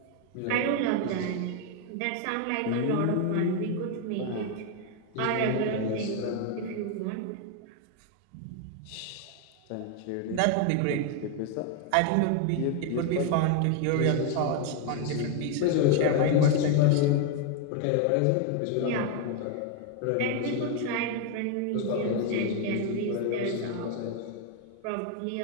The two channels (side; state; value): both; different; correlation 0.01